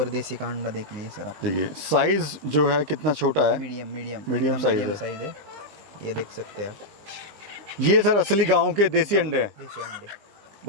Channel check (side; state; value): left; late; 20 ms